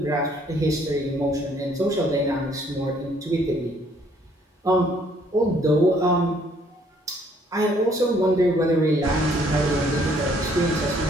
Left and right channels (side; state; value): both; normal; correlation 0.63